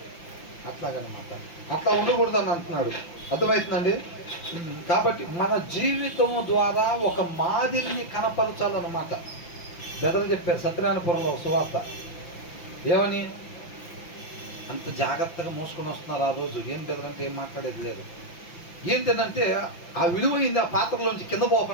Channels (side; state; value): right; late; 5.9 ms